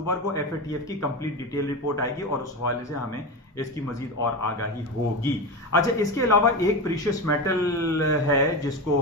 کو FATF کی کمپلیٹ ڈیٹیل رپورٹ آئے گی, اور اس حوالے سے ہمیں اس کی مزید اور آگاہی ہوگی. اچھا, اس کے علاوہ ایک پریشیس میٹل ہے جس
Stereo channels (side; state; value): both; normal; correlation 0.21